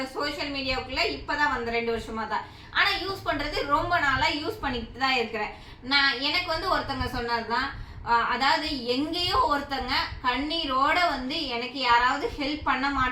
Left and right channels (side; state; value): both; identical; correlation 1.00